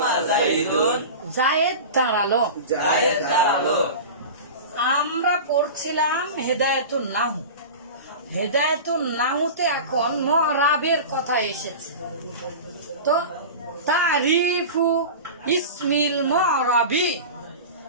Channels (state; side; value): inverted; both; correlation -0.31